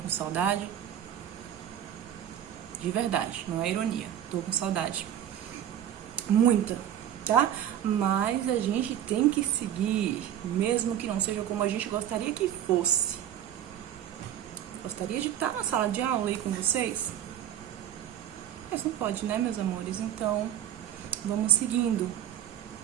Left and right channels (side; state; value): left; quieter; 10.6 dB